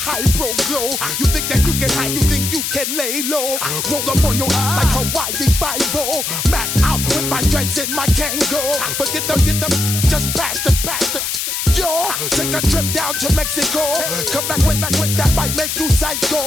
pro glow. You think that you can hide, you think you can lay low. Roll up on your ass like Hawaii 5-0. Mac out with my dreads and my Kango. Forget them, just pass the. Yo, take a trip down to Mexico. Come back with that might make you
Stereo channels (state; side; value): noise; left; hiss, 2 dB below the sound